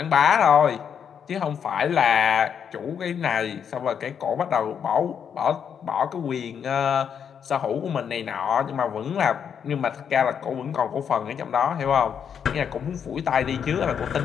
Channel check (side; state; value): right; quieter; 7.7 dB